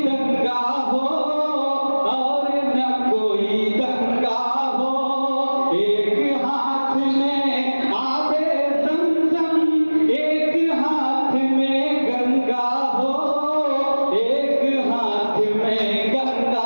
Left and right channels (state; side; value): inverted; both; correlation -1.00